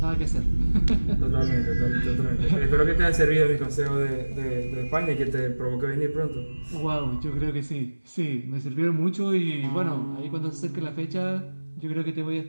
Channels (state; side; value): inverted; both; correlation -1.00